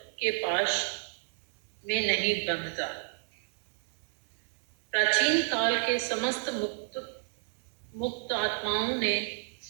के पाश में नहीं बंधता। प्राचीन काल के समस्त मुक्त आत्माओं ने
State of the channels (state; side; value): silent; left; 57 dB below the other